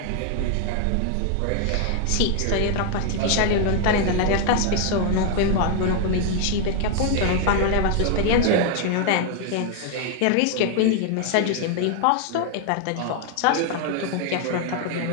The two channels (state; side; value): different; both; correlation 0.00